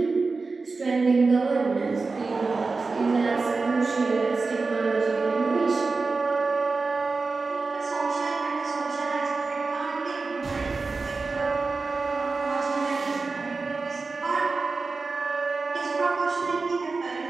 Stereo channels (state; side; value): quieter; left; 4.0 dB